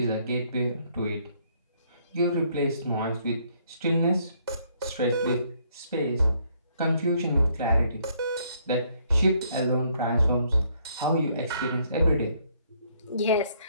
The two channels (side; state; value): both; inverted; correlation -0.68